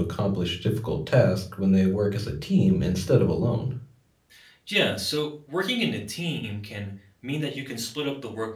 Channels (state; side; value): identical; both; correlation 1.00